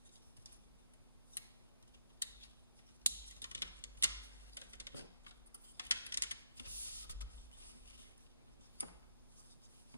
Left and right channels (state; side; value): inverted; both; correlation -0.78